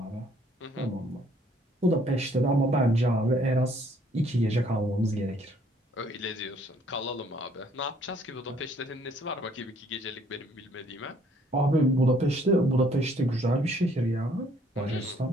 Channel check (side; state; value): both; normal; correlation 0.62